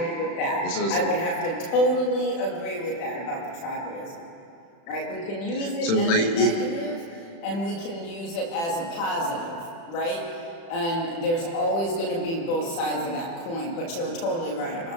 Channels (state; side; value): late; right; 36 ms